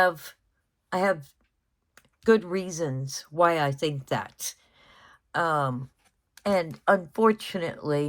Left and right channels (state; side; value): identical; both; correlation 1.00